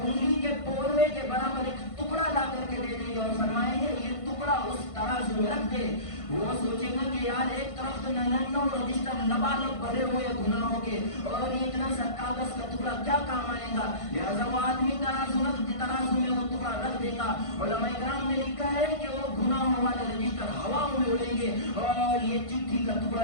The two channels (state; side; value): late; right; 1.5 ms